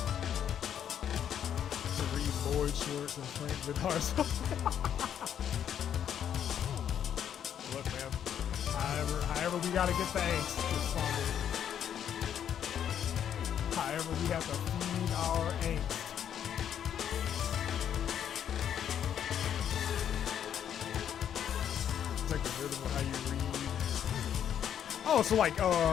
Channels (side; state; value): right; quieter; 9.3 dB